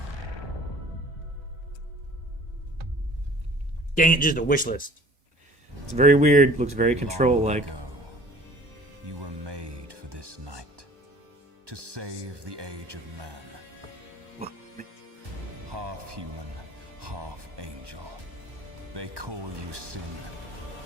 Dang it, just a wish list. It's very weird. Looks very control-like. Long ago, you were made for this night, to save the age of man. Half human, half angel. They call you sin.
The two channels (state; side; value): late; left; 1.2 ms